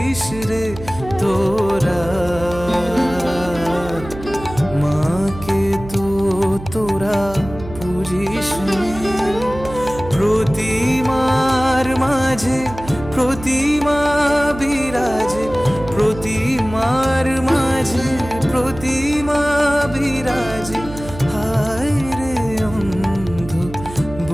রে তোরা, মাকে তো তোরা পুজিস নে। প্রতিমার মাঝে প্রতিমা বিরাজে, প্রতিমার মাঝে প্রতিমা বিরাজে, হায় রে অন্ধ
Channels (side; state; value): right; noise; hum, 13 dB below the sound